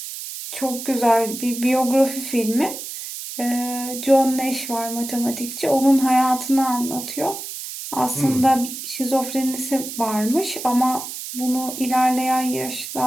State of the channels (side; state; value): right; noise; hiss, 9 dB below the sound